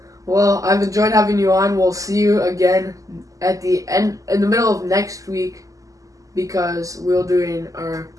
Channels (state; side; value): late; left; 0.16 ms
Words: Well, I've enjoyed having you on. We'll see you again at the end, in the middle of next week, because we're doing our